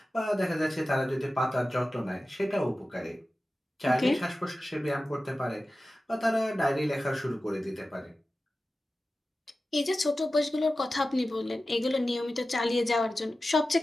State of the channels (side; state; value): both; normal; correlation 0.95